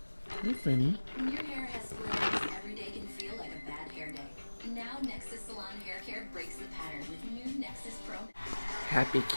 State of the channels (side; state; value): both; inverted; correlation -1.00